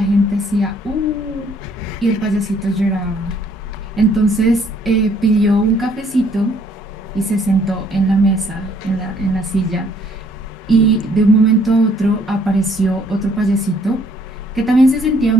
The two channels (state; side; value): normal; both; correlation 0.63